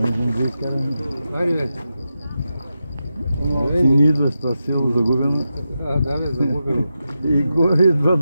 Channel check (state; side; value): inverted; both; correlation -0.89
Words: Ти не идваш това село загубено. Да, бе, загубено. И горе идва